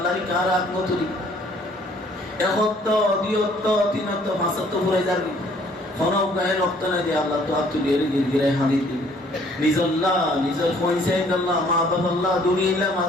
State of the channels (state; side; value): normal; both; correlation 0.60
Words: কার আত্মতুলি একত দিয়ত তিনত ভাষাত পুরে যাবে খনও গায়ে রক্ত না দিয়ে আল্লাহ তো আত্মীয়ের গিরে হানি দিন নিজল্লাহ নিজের কইছে আল্লাহ মা বাবা আল্লাহ দুনিয়া